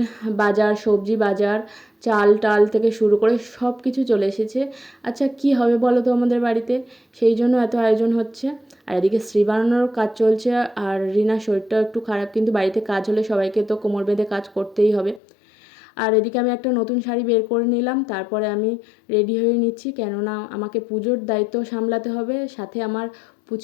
বাজার, সবজি বাজার, চাল টাল থেকে শুরু করে সব কিছু চলে এসেছে। আচ্ছা কি হবে বলো তো আমাদের বাড়িতে, সেই জন্য এত আয়োজন হচ্ছে। আর এদিকে শ্রী বানানোর কাজ চলছে, আর রিনার শরীরটাও একটু খারাপ, কিন্তু বাড়িতে কাজ হলে সবাইকে তো কোমর বেঁধে কাজ করতেই হবে। আর এদিকে আমি একটা নতুন শাড়ি বের করে নিলাম, তারপরে আমি রেডি হয়ে নিচ্ছি, কেননা আমাকে পুজোর দায়িত্ব সামলাতে হবে, সাথে আমার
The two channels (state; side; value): drops out; right; at 15.2 s